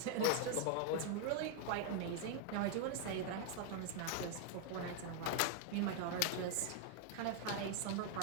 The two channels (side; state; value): both; different; correlation 0.00